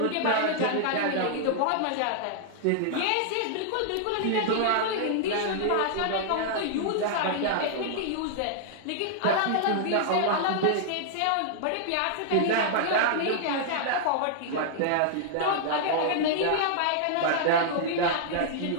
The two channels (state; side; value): different; both; correlation -0.01